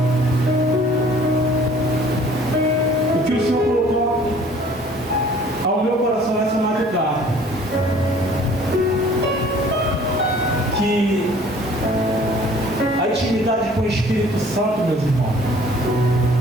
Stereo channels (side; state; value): both; normal; correlation 0.53